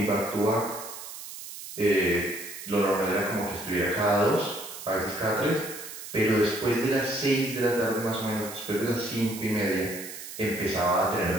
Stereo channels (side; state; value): right; noise; hiss, 11 dB below the sound